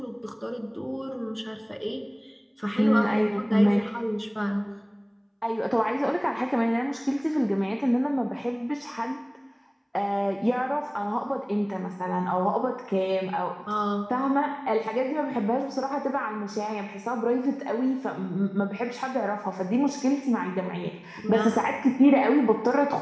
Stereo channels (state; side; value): identical; both; correlation 1.00